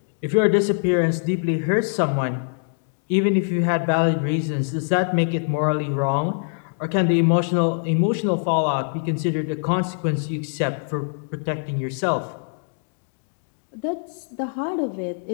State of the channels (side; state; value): right; silent; digital silence